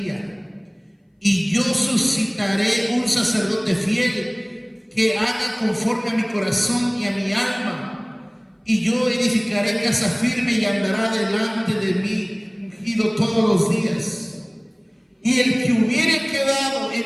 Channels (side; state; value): both; identical; correlation 1.00